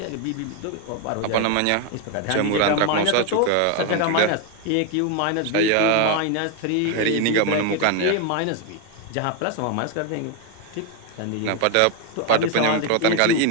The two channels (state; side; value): different; both; correlation 0.01